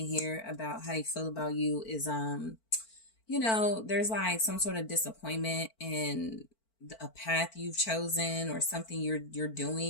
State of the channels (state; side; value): late; right; 4.5 ms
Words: here about how they feel about you is, you know, there's like some sort of disappointment in a path you've chosen or something you're